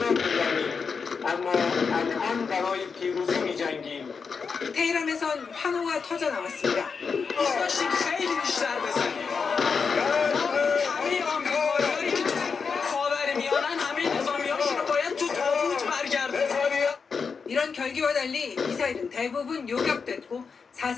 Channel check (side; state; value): right; quieter; 5.5 dB